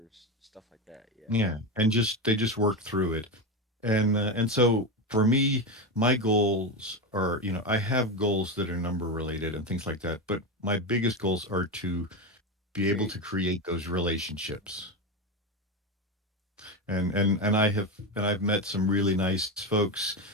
stuff like that. Yeah. Yeah, and just they just work through it. And so for me, my goals are, I have goals that are number related and things like that, but my biggest goals are to be able Create. to create those relationships. And I've met some really nice folks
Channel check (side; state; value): both; normal; correlation 0.15